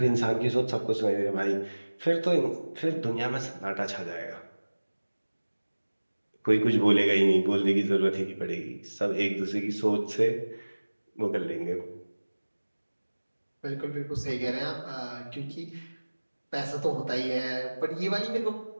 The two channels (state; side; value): inverted; both; correlation -1.00